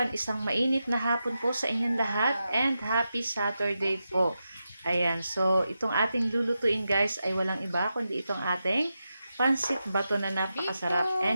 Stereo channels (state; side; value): inverted; both; correlation -0.89